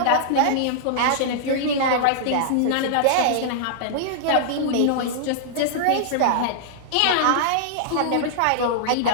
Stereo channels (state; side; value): different; both; correlation -0.01